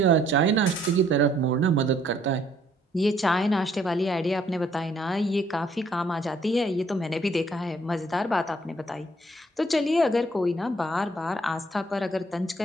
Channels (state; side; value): normal; both; correlation 0.65